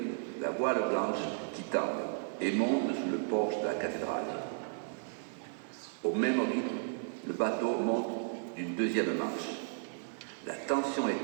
la voile blanche qui tend et monte sous le porche de la cathédrale. Au même rythme, le bateau monte d'une deuxième marche. La tension est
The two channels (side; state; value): left; silent; 55 dB below the other